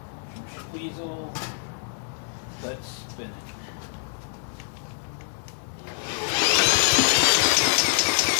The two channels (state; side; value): silent; right; digital silence